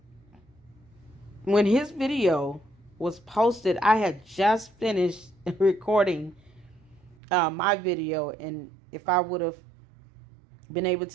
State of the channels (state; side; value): drops out; left; at 7.2 s